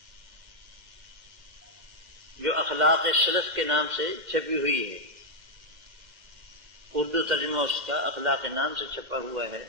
جو اخلاق سلف کے نام سے چھپی ہوئی ہے، اردو ترجمہ اس کا اخلاق نام سے چھپا ہوا ہے،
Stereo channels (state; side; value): late; left; 2.1 ms